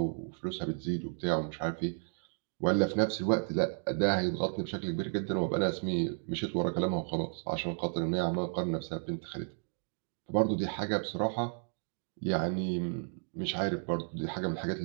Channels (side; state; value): left; silent; 56 dB below the other